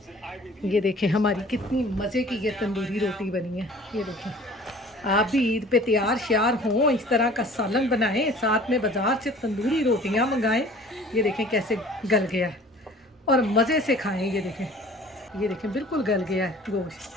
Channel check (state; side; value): normal; both; correlation 0.48